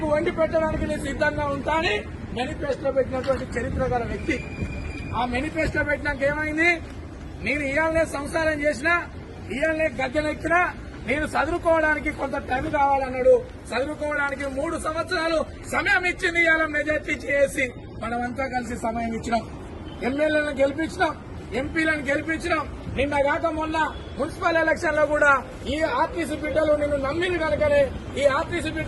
వండి పెట్టడానికి నేను సిద్ధంగా ఉంటానని మేనిఫెస్టో పెట్టినటువంటి చరిత్ర గల వ్యక్తి. ఆ మేనిఫెస్టో పెట్టినాక ఏమైంది? నేను ఇవాళనే సంసారం చేసినా, ఇవాళనే గద్దెనెక్కినా, నేను చదువుకోవడానికి కొంత టైం కావాలన్నాడు. చదువుకోవడానికి 3 సంవత్సరాలు సమయం ఇచ్చింది. ఇవాళ మెజార్టీ చేసి మనమంతా కలిసి సమయం ఇచ్చినాం, ఎమ్మెల్యేలను గెలిపించినాం, ఎంపీలను గెలిపించినాం. నిన్నగాక మొన్న మున్సిపల్ ఎలక్షన్ లో కూడా ఈ ఆర్టీసీ బిడ్డలు నిన్ను నమ్మిన కనుకనే, ఈ ఆర్టీసీ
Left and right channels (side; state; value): both; identical; correlation 1.00